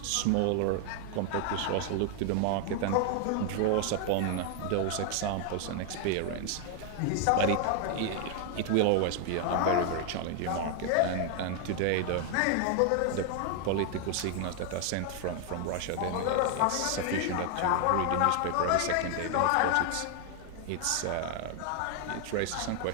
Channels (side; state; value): both; different; correlation 0.00